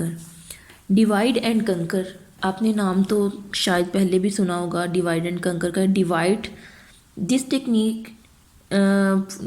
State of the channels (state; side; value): identical; both; correlation 1.00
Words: Divide and conquer, आपने नाम तो शायद पहले भी सुना होगा divide and conquer का. Divide this technique